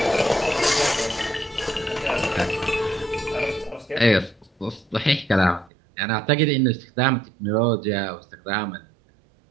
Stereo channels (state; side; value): drops out; left; at 5.7 s